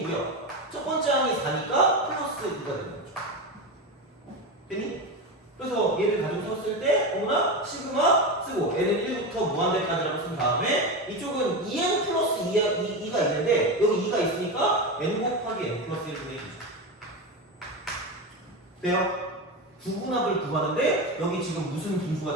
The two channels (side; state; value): both; normal; correlation 0.18